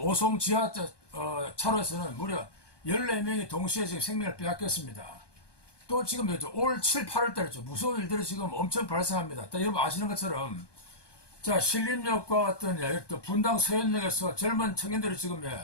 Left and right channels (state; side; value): late; right; 1.2 ms